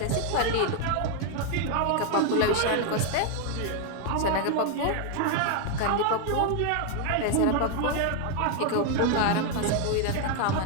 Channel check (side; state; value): both; different; correlation 0.00